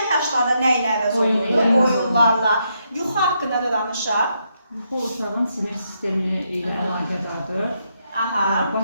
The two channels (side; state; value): both; inverted; correlation -0.78